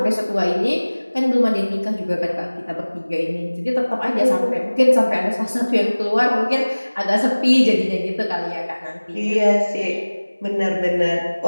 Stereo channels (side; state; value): both; inverted; correlation -1.00